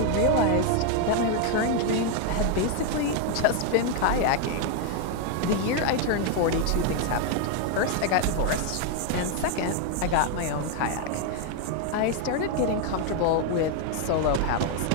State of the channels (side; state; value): both; different; correlation 0.00